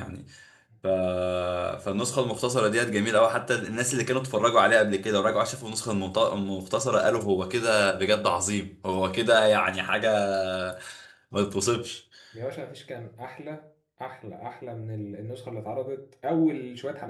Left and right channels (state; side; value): identical; both; correlation 1.00